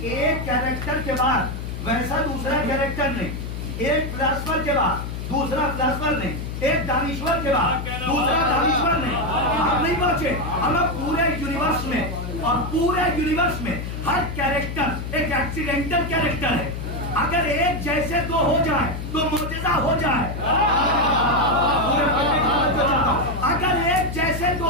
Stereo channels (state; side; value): noise; left; hum, 6 dB below the sound